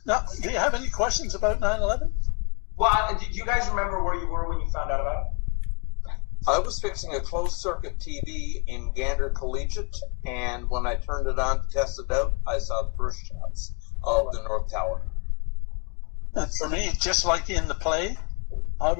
Now, do you have any questions about 9/11? Well, do you guys remember where you were when you found out about it? I was fixing a closed circuit TV in Gander Collegiate, and when I turned it on to test it out, I saw the first shots of the North Tower. And for me, just like in the play, I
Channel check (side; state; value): right; quieter; 35.2 dB